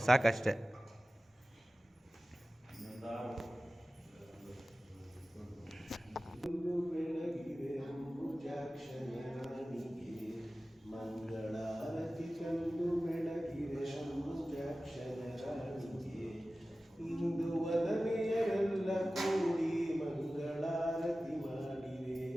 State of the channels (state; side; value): normal; both; correlation 0.96